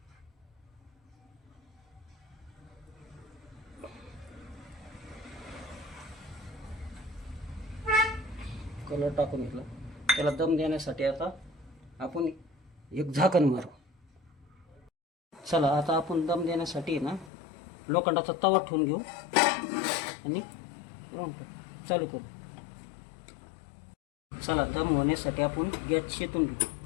कलर टाकून घेतला. त्याला दम देण्यासाठी आता आपण एक झाकण मारू. चला, आता आपण दम देण्यासाठी ना लोखंडाचा तवा ठेवून घेऊ आणि चालू करू. चला, दम होण्यासाठी आपण गॅस शेतून घेऊ.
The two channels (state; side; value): drops out; right; at 17.3 s